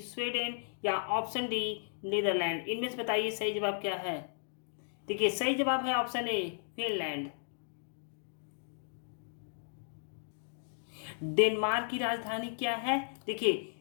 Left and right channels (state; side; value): silent; right; digital silence